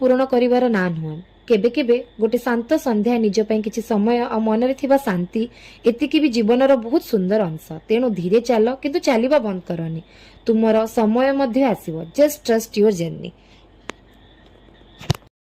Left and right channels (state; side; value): identical; both; correlation 1.00